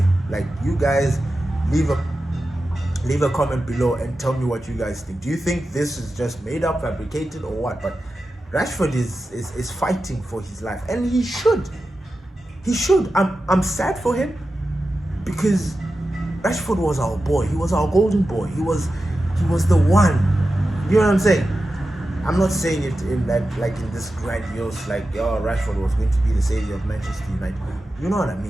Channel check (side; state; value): both; normal; correlation 0.92